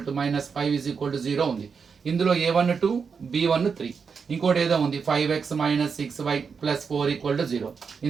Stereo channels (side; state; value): left; quieter; 5.8 dB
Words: to minus 5 is equal to 0 ఉంది. ఇందులో a1 2 b1 3, ఇంకోటి ఏదో ఉంది 5x minus 6y plus 4 equal to 0.